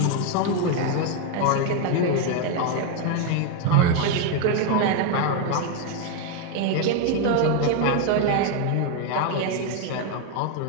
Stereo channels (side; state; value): both; different; correlation 0.01